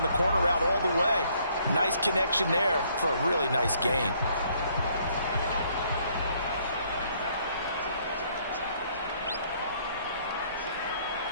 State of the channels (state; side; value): inverted; both; correlation -0.66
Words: the corner route all the way. Nice connection there for a really nice gain.